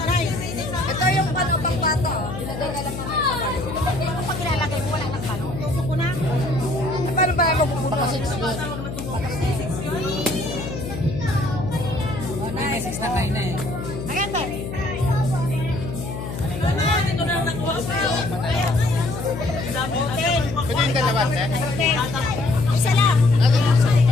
Ito yung pang bata. Ilagay na lang naman sa balo. Pag ilalagay mo, wala nang balo. Tusok ko na. Paano ba yung mapupunta sa 6 doon? May 6 na kayo na eh. Ayan ba? Pwede yung dalawa, eh? Isa lang.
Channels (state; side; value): noise; left; hum, 8 dB below the sound